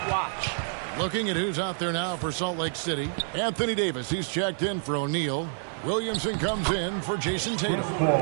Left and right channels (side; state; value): left; silent; 59 dB below the other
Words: Looking at who's out there now for Salt Lake City. Anthony Davis, he's checked in for O'Neal. Williamson comes in for Jason Tatum.